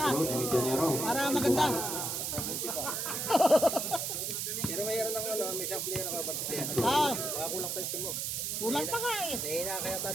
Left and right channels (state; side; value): noise; right; hiss, 2 dB below the sound